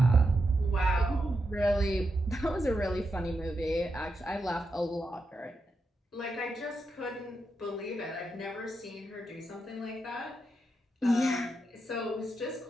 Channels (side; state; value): both; normal; correlation 0.85